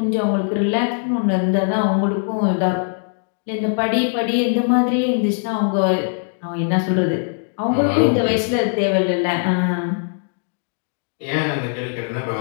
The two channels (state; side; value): silent; right; digital silence